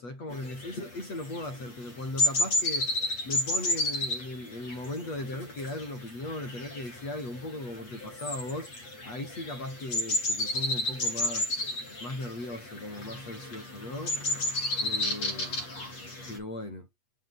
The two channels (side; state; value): right; late; 8.3 ms